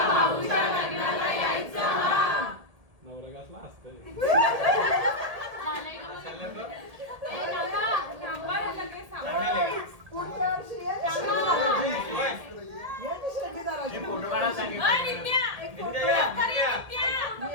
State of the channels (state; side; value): late; left; 1.8 ms